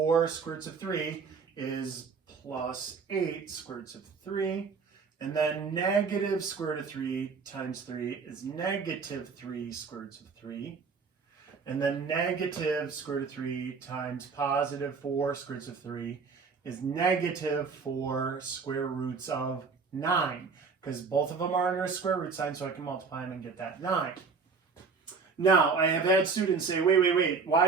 square roots of 3 is plus 8 square roots of 3. And then negative square root of 3 times 3 is negative 3 square roots of 3. And then negative square root of 3 times positive 4 square roots of 3 is negative 4 square roots of 9. Because both of them are under a square root sign, so I can multiply them and get that 9. Now, I have had students say, wait,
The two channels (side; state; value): left; quieter; 5.1 dB